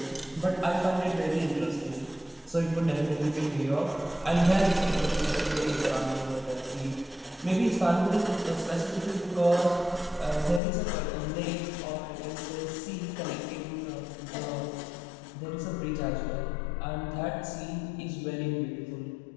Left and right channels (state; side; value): drops out; right; at 10.6 s